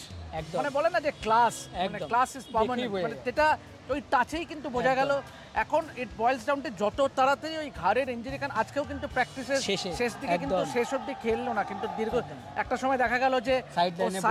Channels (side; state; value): both; identical; correlation 1.00